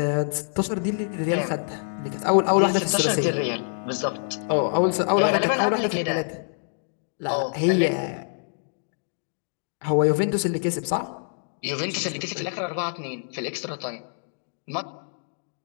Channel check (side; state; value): right; silent; digital silence